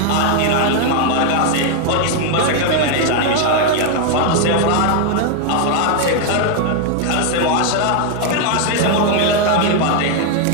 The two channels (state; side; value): different; both; correlation 0.00